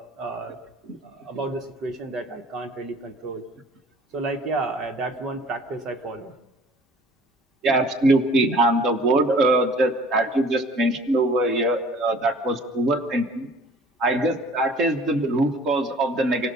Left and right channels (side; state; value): both; normal; correlation 0.50